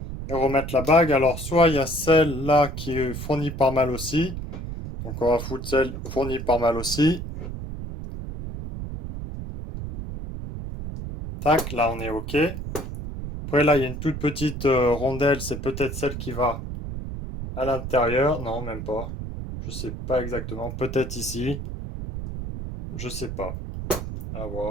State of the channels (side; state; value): right; noise; rumble, 7 dB below the sound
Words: et remettre la bague. Alors, soit il y a celle-là qui est fournie par mal aussi. Donc, on va foutre celle fournie par mal aussi. Tac, là, on est ok. Après, là, il y a une toute petite rondelle. C'est peut-être celle qui va à l'intérieur. Non, même pas. Je sais pas exactement. Peut-être ici. Je sais pas. À